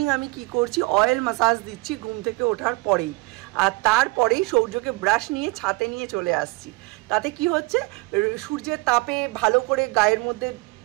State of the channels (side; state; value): left; quieter; 24.9 dB